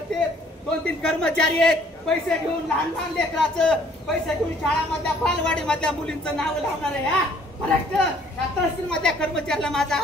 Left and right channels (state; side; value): normal; both; correlation 0.59